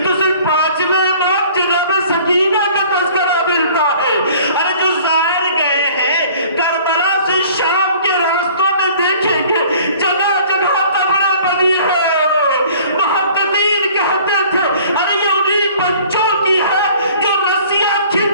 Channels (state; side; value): inverted; both; correlation -0.51